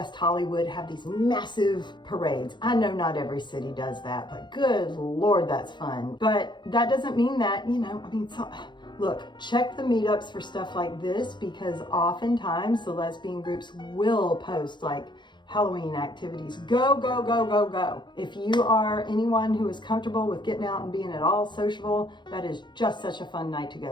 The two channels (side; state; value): right; late; 0.22 ms